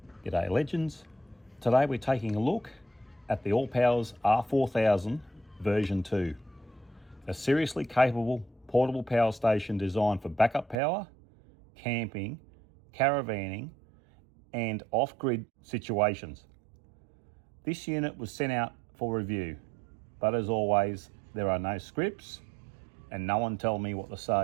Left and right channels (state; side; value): drops out; left; at 10.8 s